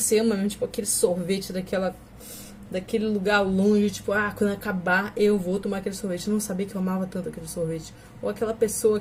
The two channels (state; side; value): identical; both; correlation 1.00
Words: ama mesmo, tipo, aquele sorvete daquele lugar longe, tipo, quando acabar eu vou tomar aquele sorvete. Eu não sabia que eu amava tanto aquele sorvete. Ou aquela pessoa,